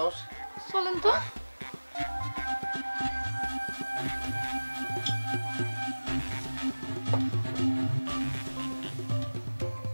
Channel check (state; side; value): inverted; both; correlation -1.00